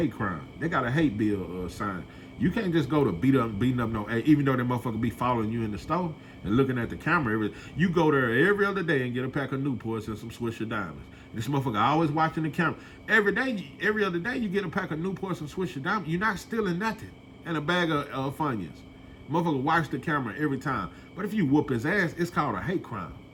crime. They got a hate bill sign. You can't just go to beating up no, even though that motherfucker be following you in the store and looking at the camera. You go there every other day and get a pack of Newports and some Swisher Diamonds. This motherfucker always watching the camera. Every other day you get a pack of Newports and Swisher Diamonds. You're not stealing nothing. And a bag of Funyuns. Motherfucker watch the camera every time. But if you whoop his ass, it's called a hate crime.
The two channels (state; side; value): identical; both; correlation 1.00